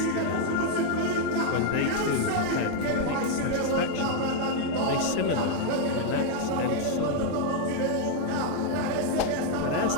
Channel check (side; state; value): both; different; correlation 0.00